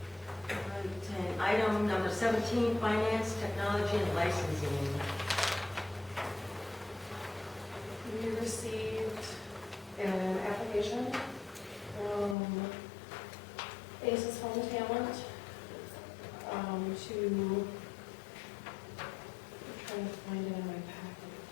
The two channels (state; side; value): drops out; right; at 12.4 s